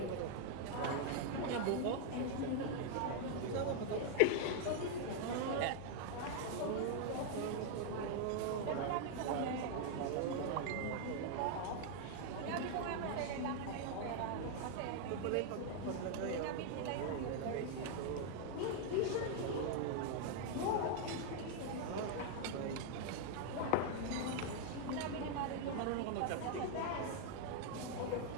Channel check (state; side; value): different; both; correlation 0.00